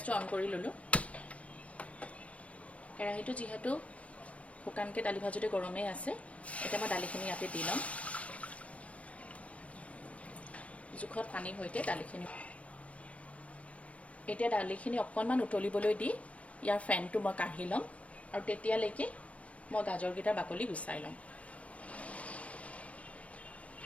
অন কৰি ল'লোঁ। কেৰাহীটো যিহেতু শুকানকৈ দালি ভাজোঁতে গৰমেই আছে, এতিয়া মই দালিখিনি ইয়াতে দি ল'ম। জোখত পানীৰ সৈতে দালিখিনি। এতিয়া দালিখিনি অকণমান উতলিবলৈ দি ইয়াৰ ফেনটো মই কাঢ়ি ল'ম আৰু তেতিয়ালৈকে মই গাজৰকেইটাৰ বাকলি গুচাই ল'ম।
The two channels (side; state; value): right; late; 0.065 ms